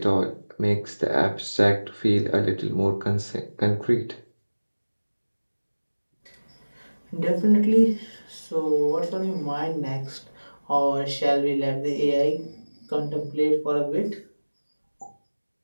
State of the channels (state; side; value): inverted; both; correlation -1.00